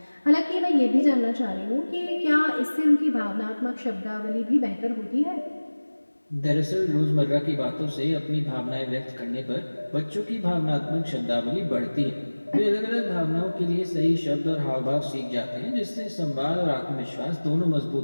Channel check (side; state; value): both; inverted; correlation -1.00